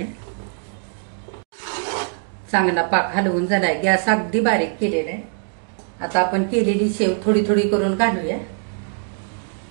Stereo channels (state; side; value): silent; left; 64 dB below the other